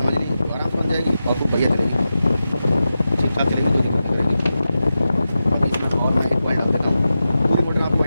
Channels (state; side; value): inverted; both; correlation -0.92